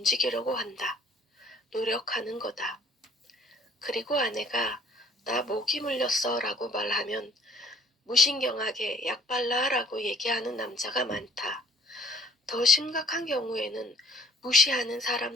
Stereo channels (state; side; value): normal; both; correlation 0.56